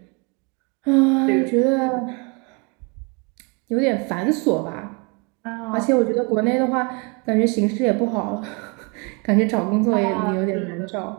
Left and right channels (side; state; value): left; quieter; 31.9 dB